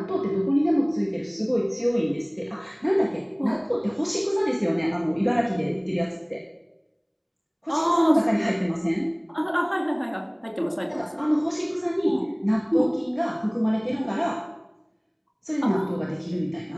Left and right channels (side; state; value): both; identical; correlation 1.00